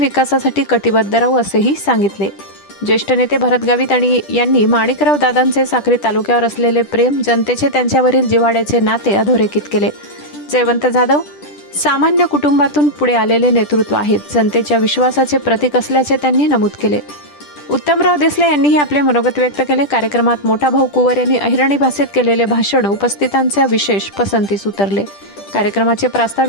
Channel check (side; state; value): right; late; 10 ms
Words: कटिबद्ध राहू असेही सांगितले। ज्येष्ठ नेते भरत गावित यांनी माणिकराव दादांचे साक्री तालुक्यावर असलेले प्रेम, जनतेचे त्यांच्यावरील जिव्हाळ्याचे नाते अधोरेखित केले। जयवंत जाधव सामान्य कुटुंबातून पुढे आलेले नेतृत्व आहेत, जनतेच्या विश्वासाचे प्रतीक असल्याचे त्यांनी नमूद केले। उत्तमराव देसले यांनीही आपले मनोगत व्यक्त केले। कार्यक्रमात मोठा भाऊ कुवर यांनी अहिराणी भाषेत केलेले भाषण उपस्थितांच्या विशेष पसंतीस उतरले। कार्यक्रमाचे